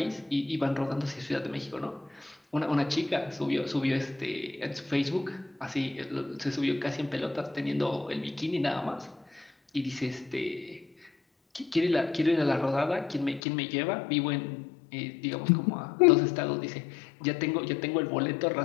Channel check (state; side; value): drops out; right; at 13.4 s